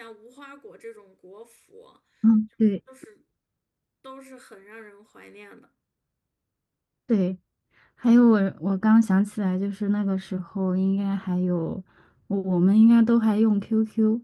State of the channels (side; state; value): both; identical; correlation 1.00